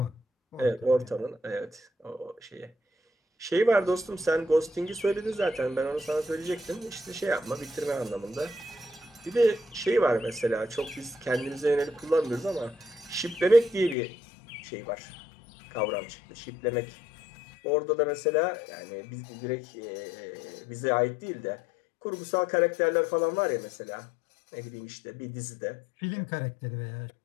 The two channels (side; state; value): right; drops out; at 14.0 s